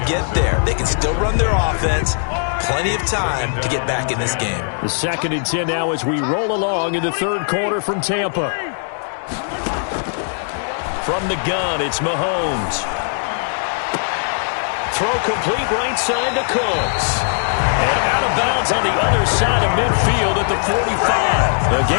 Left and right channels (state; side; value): silent; right; 67 dB below the other